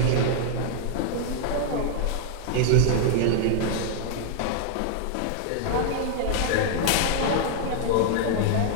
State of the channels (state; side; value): different; both; correlation 0.00